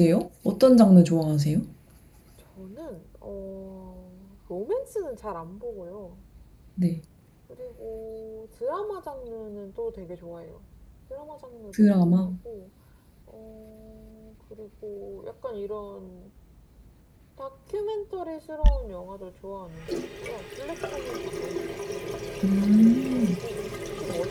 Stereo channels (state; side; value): identical; both; correlation 1.00